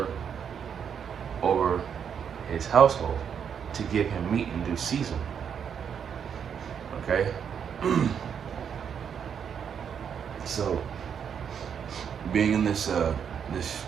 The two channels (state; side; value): quieter; left; 7.7 dB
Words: over his household, to give him meat in due season?" Okay? So, being in this